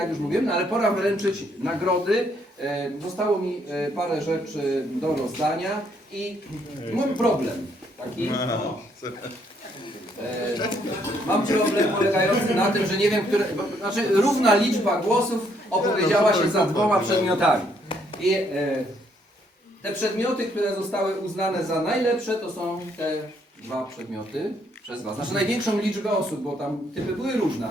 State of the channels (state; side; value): normal; both; correlation 0.70